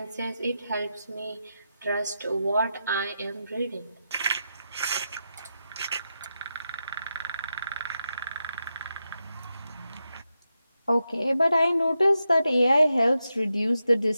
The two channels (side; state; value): both; inverted; correlation -0.87